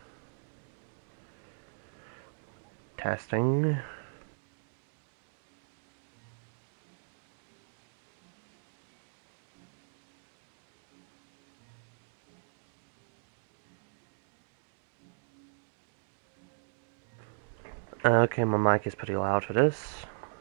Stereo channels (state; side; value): silent; left; digital silence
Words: Testing. Okay, my mic is pretty loud for this.